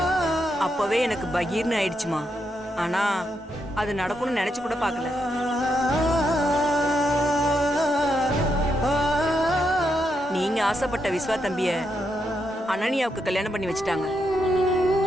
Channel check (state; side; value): normal; both; correlation 0.81